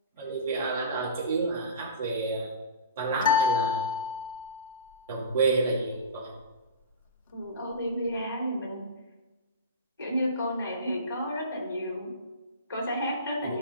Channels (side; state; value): both; inverted; correlation -0.32